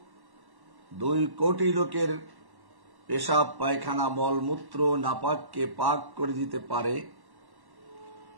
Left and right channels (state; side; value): late; left; 1.1 ms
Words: 2 কোটি লোকের পেশাব, পায়খানা, মলমূত্র, নাপাককে পাক করে দিতে পারে,